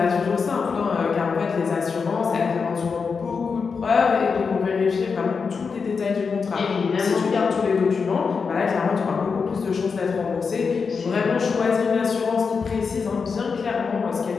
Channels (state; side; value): quieter; right; 5.4 dB